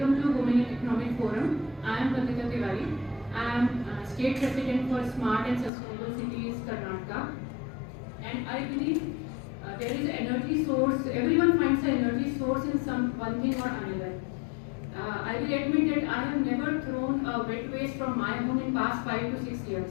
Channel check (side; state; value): right; drops out; at 5.7 s